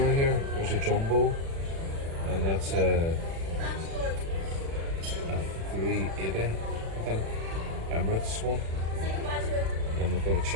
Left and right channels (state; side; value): late; left; 36 ms